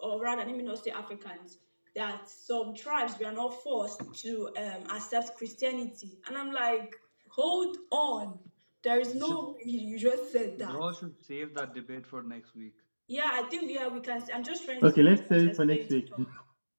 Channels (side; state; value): both; inverted; correlation -1.00